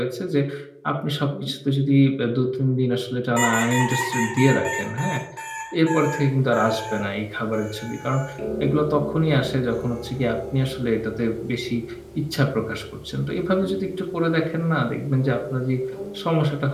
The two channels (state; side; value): identical; both; correlation 1.00